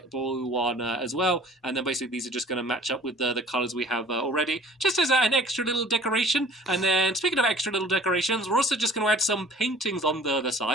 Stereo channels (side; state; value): both; normal; correlation 0.49